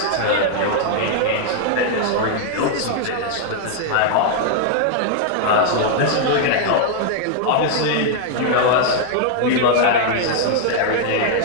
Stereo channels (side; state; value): both; different; correlation 0.00